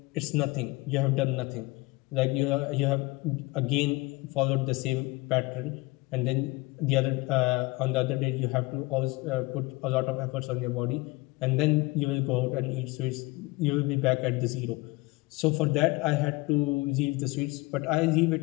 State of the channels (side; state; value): right; quieter; 22.9 dB